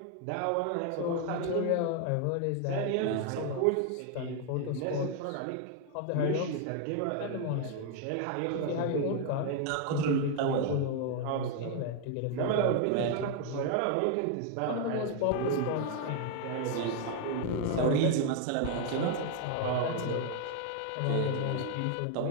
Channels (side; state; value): both; different; correlation 0.00